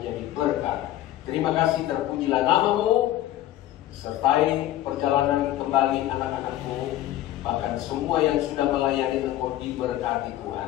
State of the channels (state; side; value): quieter; right; 13.8 dB